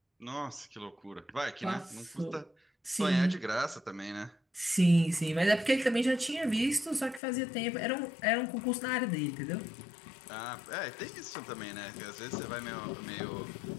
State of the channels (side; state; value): right; drops out; at 7.2 s